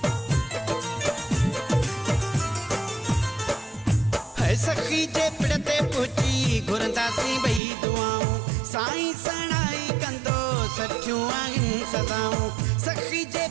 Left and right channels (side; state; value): left; drops out; at 7.6 s